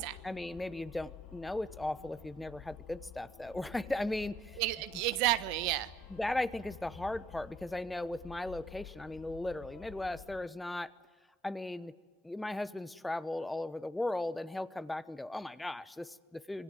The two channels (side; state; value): both; normal; correlation 0.69